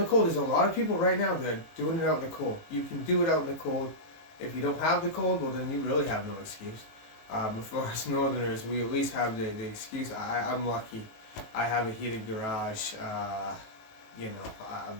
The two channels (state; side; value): late; right; 18 ms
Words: cold. There's a lot of people right now that are doing it out in the cold. You can do it out in the cold. If you don't have the cold, well then you really have no excuse. For us northerners, we at least have the excuse. I'm lucky. I have a heated garage. I'm